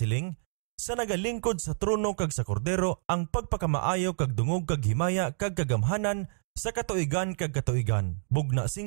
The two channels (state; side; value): silent; left; digital silence